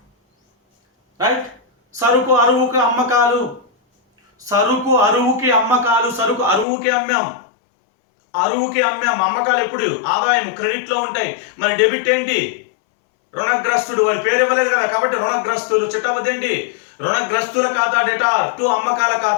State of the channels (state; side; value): drops out; right; at 6.7 s